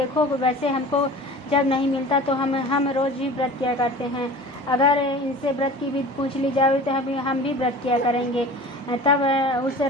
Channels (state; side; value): normal; both; correlation 0.39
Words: वैसे हमको जब नहीं मिलता तो हम रोज ही व्रत किया करते हैं। अगर इनसे व्रत की विधि पूछ ली जाए तो हम भी व्रत किया करेंगे। तब उस